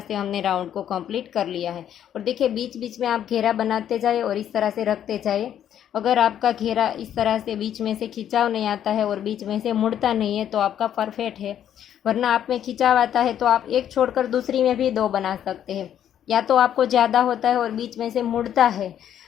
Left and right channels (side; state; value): right; quieter; 10.1 dB